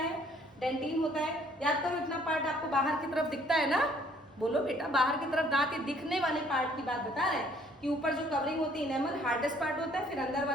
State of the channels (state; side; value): normal; both; correlation 0.61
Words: डेंटिन होता है। याद करो इतना पार्ट आपको बाहर की तरफ दिखता है ना, बोलो बेटा, बाहर की तरफ दांत, ये दिखने वाले पार्ट की बात बता रहे हैं कि ऊपर जो कवरिंग होती है एनामल हार्डेस्ट पार्ट होता है, फिर अंदर